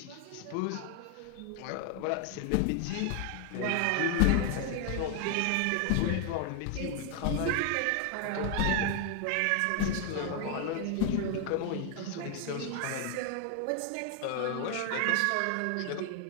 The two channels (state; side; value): different; both; correlation 0.00